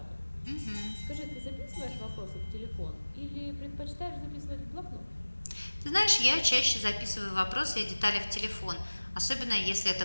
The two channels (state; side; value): inverted; both; correlation -1.00